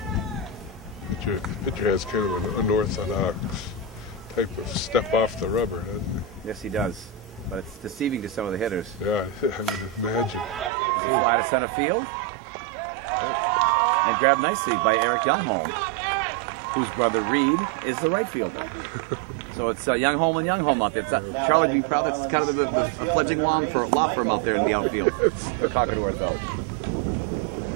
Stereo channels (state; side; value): drops out; left; at 10.7 s